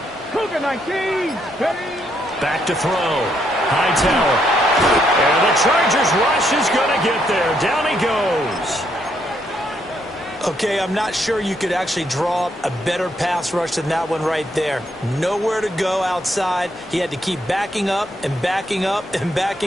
Cougar 19. Back to throw. Hightower. And the Chargers rush is going to get there. Down he goes. Okay, I'm not sure you could actually draw up a better pass rush than that one right there. Nowhere to go outside. He had to keep backing up and backing up and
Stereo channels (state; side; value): normal; both; correlation 0.74